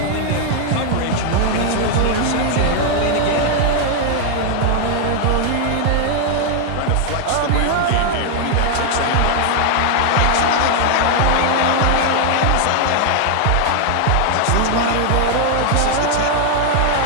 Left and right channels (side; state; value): both; different; correlation 0.00